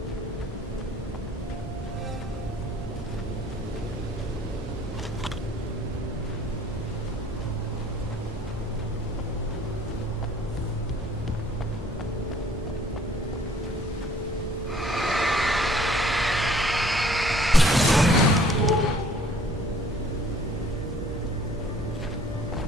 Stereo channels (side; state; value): both; normal; correlation 0.56